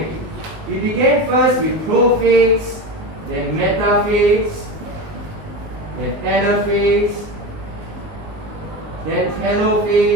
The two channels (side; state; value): left; late; 19 ms